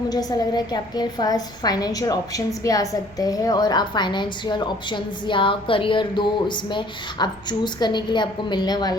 ऐसा लग रहा है कि आपके पास फाइनेंशियल ऑप्शंस भी आ सकते हैं और आप फाइनेंशियल ऑप्शंस या करियर दो इसमें आप चूज़ करने के लिए आपको मिलने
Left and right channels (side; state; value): both; normal; correlation 0.57